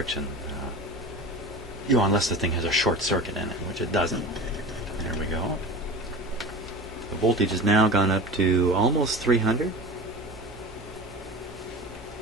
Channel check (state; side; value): normal; both; correlation 0.32